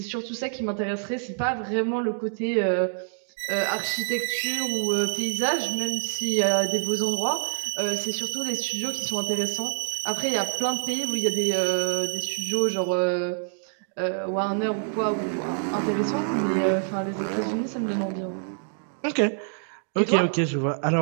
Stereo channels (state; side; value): silent; left; digital silence